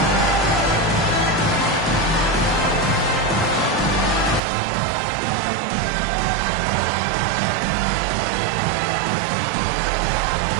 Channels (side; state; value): left; drops out; at 4.4 s